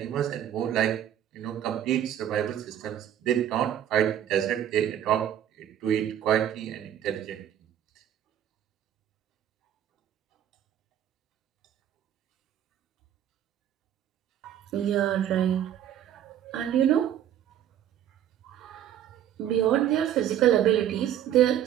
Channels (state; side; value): quieter; left; 10.7 dB